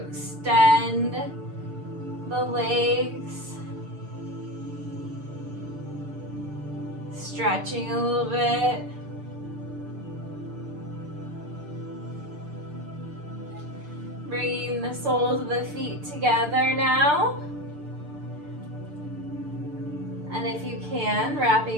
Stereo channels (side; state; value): left; late; 6.7 ms